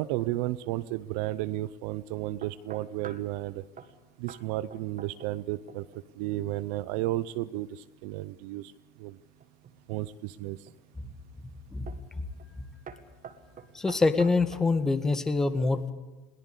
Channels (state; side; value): normal; both; correlation 0.54